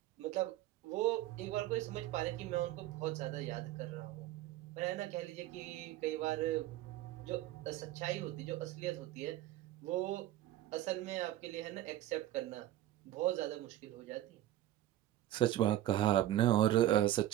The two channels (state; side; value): quieter; left; 13.7 dB